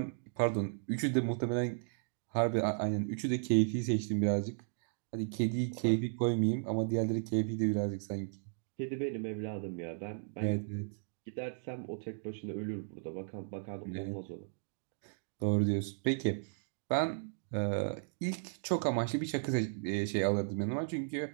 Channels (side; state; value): left; silent; digital silence